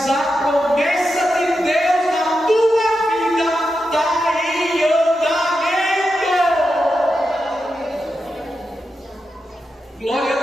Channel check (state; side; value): normal; both; correlation 0.88